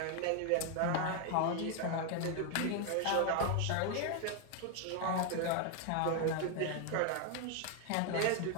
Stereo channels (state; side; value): different; both; correlation 0.01